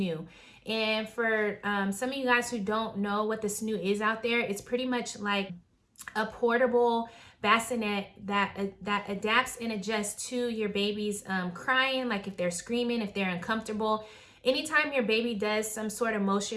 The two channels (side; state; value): both; identical; correlation 1.00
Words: And for some of you guys who don't know what the SNOO is out there, it's pretty much like a portable bassinet that adapts and adjusts to your baby's crying, like if they're screaming, if they're uncomfortable. Anytime your baby does some sort of